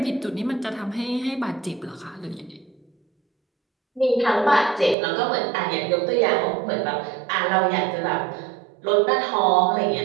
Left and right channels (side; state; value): left; drops out; at 5.0 s